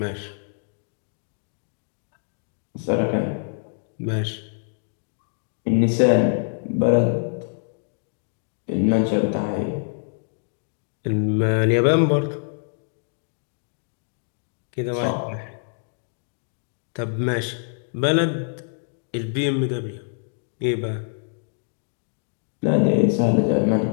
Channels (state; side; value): silent; right; digital silence